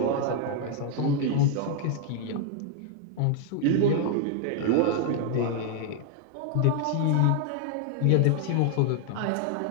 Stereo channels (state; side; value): different; both; correlation 0.00